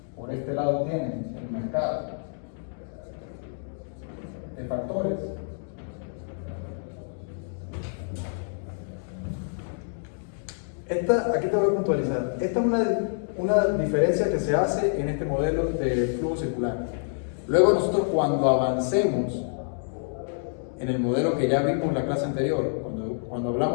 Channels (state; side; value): silent; right; digital silence